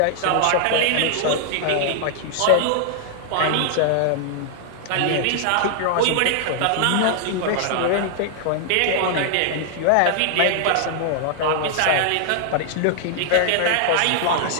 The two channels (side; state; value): both; different; correlation -0.01